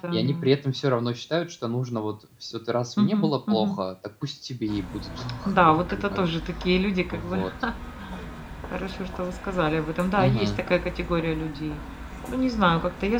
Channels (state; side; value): identical; both; correlation 1.00